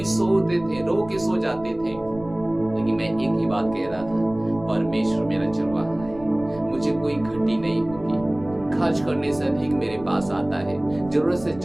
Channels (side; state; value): right; noise; rumble, 18 dB below the sound